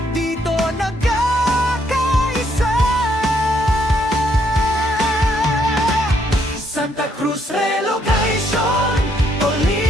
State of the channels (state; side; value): normal; both; correlation 0.72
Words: dito nagkakaisa. Santa Cruz Relocation,